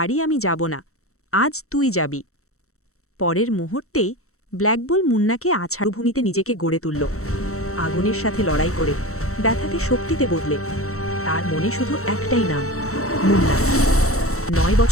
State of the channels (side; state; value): right; late; 0.64 ms